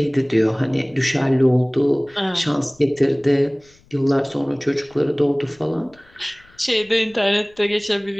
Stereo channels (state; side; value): noise; left; rumble, 30 dB below the sound